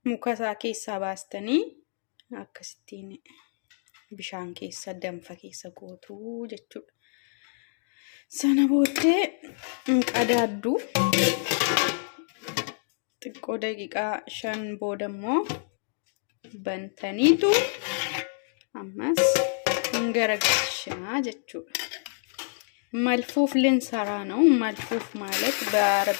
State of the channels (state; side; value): silent; right; digital silence